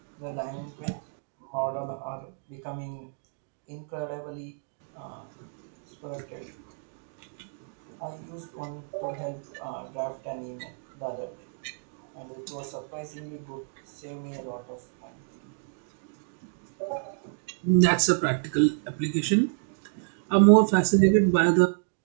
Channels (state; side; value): silent; left; digital silence